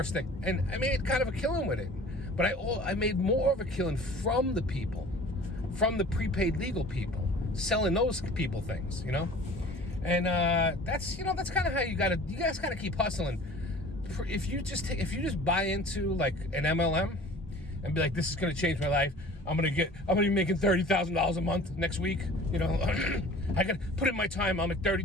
thing, and I made kind of a killing with it. But I made more of a killing from the people, from the prepaid legal people, selling those people things, and that's kind of how you guys kind of keep hustling. If you just buy into like an MLM and be like, this is going to change my life. I'm going to be making $30,000 a month next week. I got to put in my time. I'll make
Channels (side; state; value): both; normal; correlation 0.45